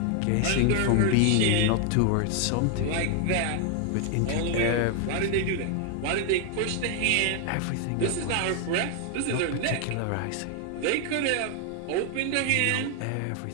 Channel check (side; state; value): both; different; correlation 0.00